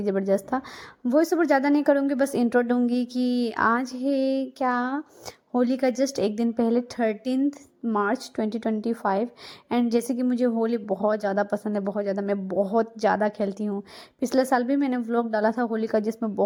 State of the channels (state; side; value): identical; both; correlation 1.00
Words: ज़बरदस्त था। वॉइस ओवर ज़्यादा नहीं करूँगी, बस इंट्रो दूँगी कि आज है क्या, होली का जस्ट एक दिन पहले 13 मार्च 2025। एंड जैसे कि मुझे होली बहुत ज़्यादा पसंद है, बहुत ज़्यादा, मैं बहुत ज़्यादा खेलती हूँ। पिछले साल भी मैंने व्लॉग डाला था होली का, जिसमें